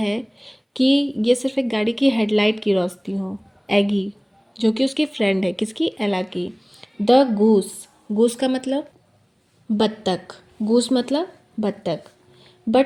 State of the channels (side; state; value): both; identical; correlation 1.00